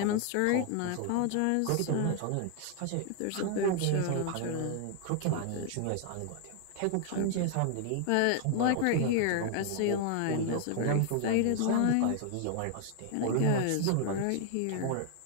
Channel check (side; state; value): both; different; correlation 0.00